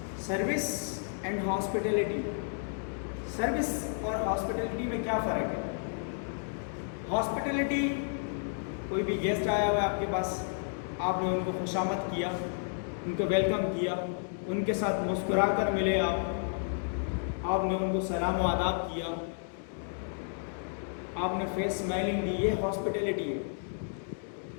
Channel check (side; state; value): right; silent; digital silence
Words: सर्विस एंड हॉस्पिटैलिटी। सर्विस और हॉस्पिटैलिटी में क्या फ़र्क है? हॉस्पिटैलिटी, कोई भी गेस्ट आया हुआ है आपके पास, आपने उनको खुशामद किया, उनको वेलकम किया, उनके साथ मुस्कुरा कर मिले आपने उनको सलाम व आदाब किया, आपने फेस स्माइलिंग दी, ये हॉस्पिटैलिटी है।